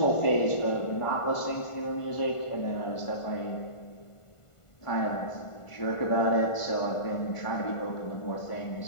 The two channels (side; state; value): right; late; 1.5 ms